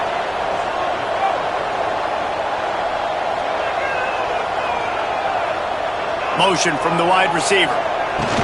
Motion from the wide receiver.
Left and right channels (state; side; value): identical; both; correlation 1.00